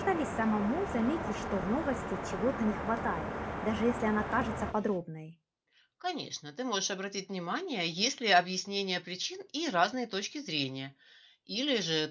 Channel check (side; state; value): both; identical; correlation 1.00